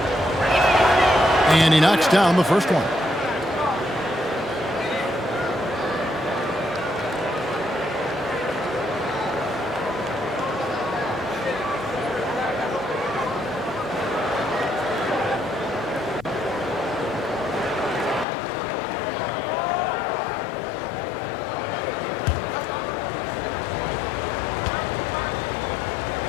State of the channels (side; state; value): right; drops out; at 18.2 s